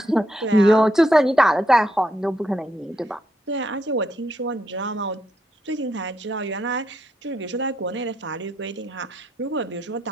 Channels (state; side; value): normal; both; correlation 0.79